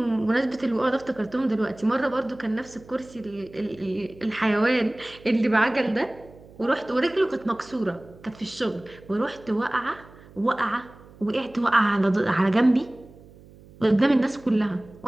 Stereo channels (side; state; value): right; noise; hum, 23 dB below the sound